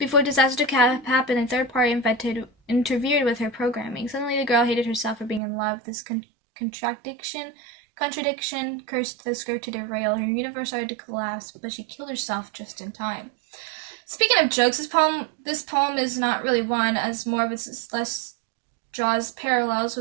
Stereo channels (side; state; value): left; drops out; at 5.4 s